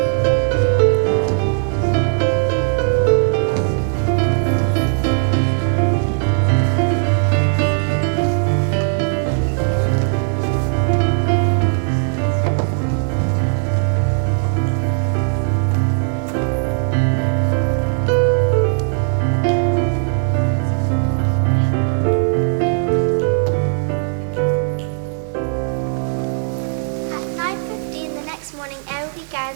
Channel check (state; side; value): silent; left; 67 dB below the other